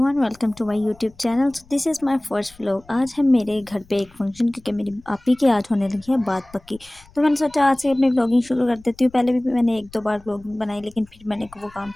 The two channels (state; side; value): noise; left; rumble, 26 dB below the sound